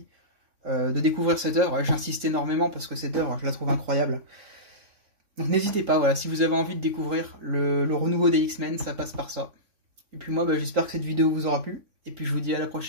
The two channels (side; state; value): left; late; 3.6 ms